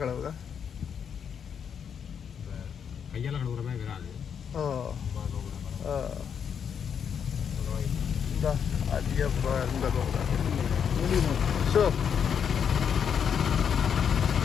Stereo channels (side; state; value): right; quieter; 7.5 dB